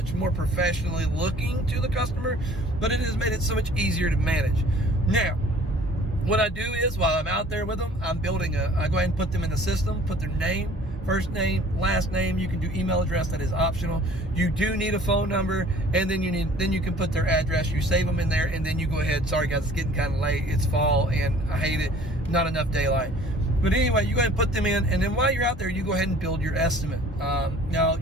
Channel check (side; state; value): both; normal; correlation 0.51